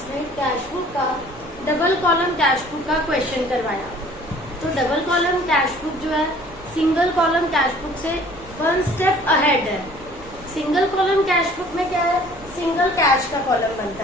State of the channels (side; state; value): right; noise; rumble, 21 dB below the sound